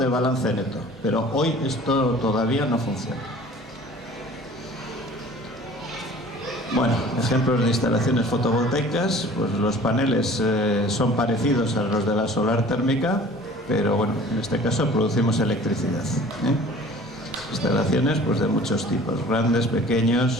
balance neto, pero hoy esto todavía no funciona. Bueno, ejemplos de instalaciones fotovoltaicas, pues los paneles son parecidos a los de la solar térmica, pero bueno, en este caso producimos electricidad. Instalaciones pues de muchos tipos, grandes,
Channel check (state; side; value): normal; both; correlation 0.47